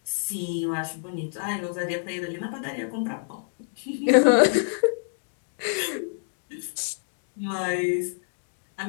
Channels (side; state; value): right; silent; digital silence